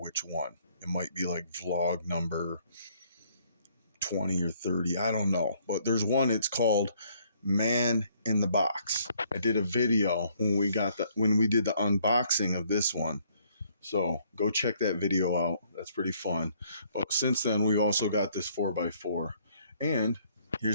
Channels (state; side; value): inverted; both; correlation -0.65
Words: one. It might be like vlog number 20 or 30, I don't know, but there's one. It's called Man in the Box. I did a video when we did the unboxing of this one, so go check that video out. That's pretty fun. But since then, we've also got this 4x4. And